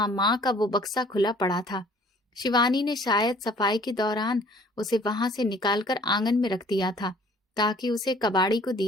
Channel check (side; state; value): both; normal; correlation 0.55